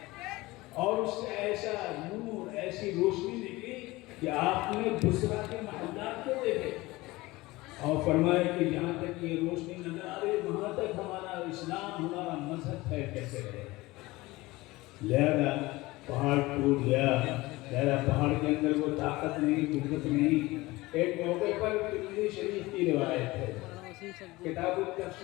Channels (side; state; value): right; quieter; 20.4 dB